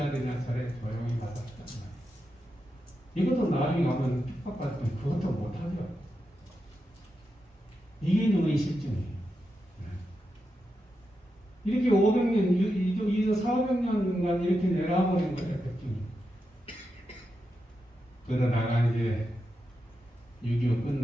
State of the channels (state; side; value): normal; both; correlation 0.87